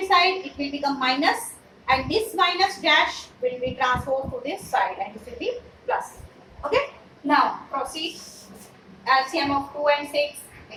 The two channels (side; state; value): both; identical; correlation 1.00